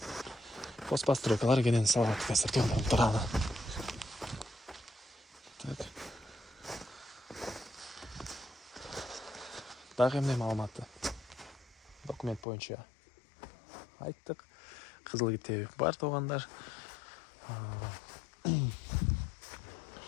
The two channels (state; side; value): drops out; right; at 12.5 s